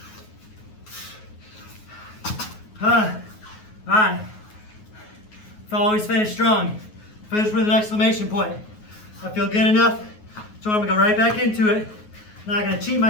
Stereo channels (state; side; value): late; right; 9.4 ms